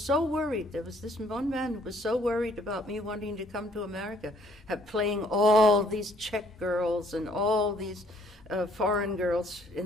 worried. There was this one man who was so worried about me wanting to come to America, playing all these Czech girls and all these foreign girls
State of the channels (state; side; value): normal; both; correlation 0.63